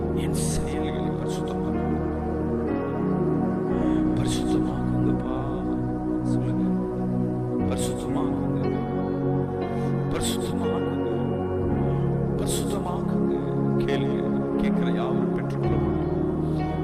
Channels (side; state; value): both; identical; correlation 1.00